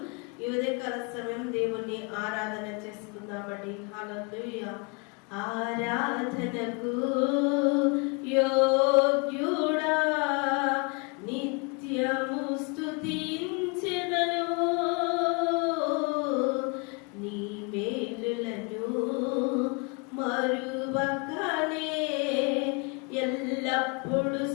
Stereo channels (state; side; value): quieter; right; 32.1 dB